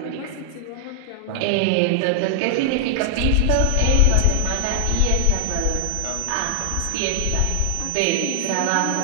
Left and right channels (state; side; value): different; both; correlation 0.00